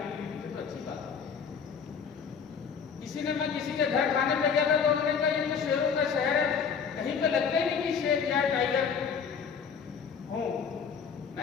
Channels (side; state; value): right; quieter; 6.5 dB